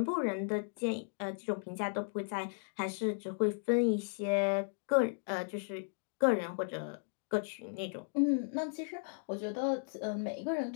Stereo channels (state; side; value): silent; right; digital silence